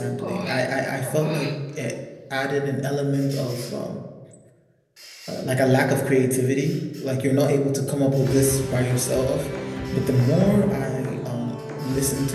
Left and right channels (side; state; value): both; identical; correlation 1.00